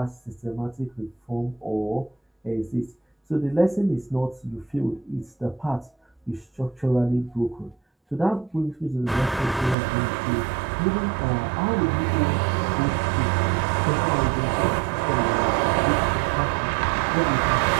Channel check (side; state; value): left; drops out; at 9.8 s